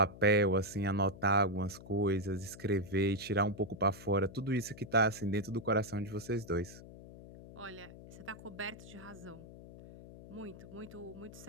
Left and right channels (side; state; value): left; noise; hum, 16 dB below the sound